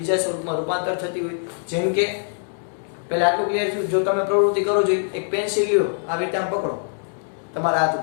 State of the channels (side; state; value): right; silent; digital silence